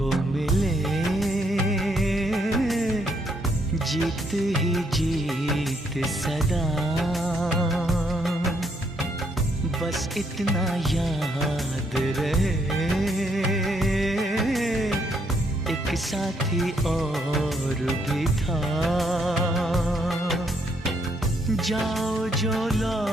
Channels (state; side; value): normal; both; correlation 0.73